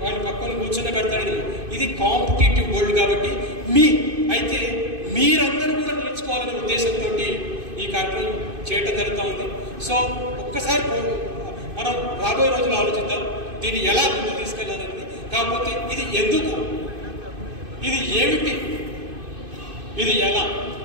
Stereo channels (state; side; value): late; left; 2.5 ms